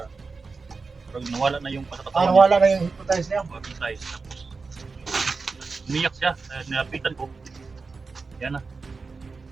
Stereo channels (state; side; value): quieter; left; 4.4 dB